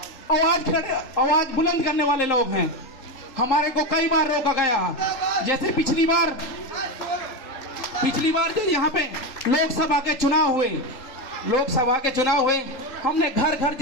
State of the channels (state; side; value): late; right; 3.8 ms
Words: आवाज बुलंद करने वाले लोग हैं। हमारे को कई बार रोका गया, जैसे पिछली बार जो यहाँ पे लोकसभा के चुनाव हुए, हमने घर घर